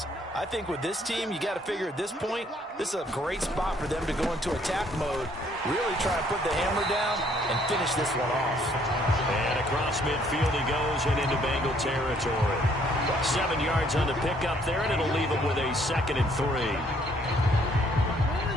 I think with this team, you got to figure at this point, this is a great spot for them to go into attack mode, really try to put the hammer down and finish this one off. And across midfield he goes and into Bengal territory. 7 yards on the pickup there, and it'll leave him with a 2nd and 3.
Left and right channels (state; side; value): normal; both; correlation 0.65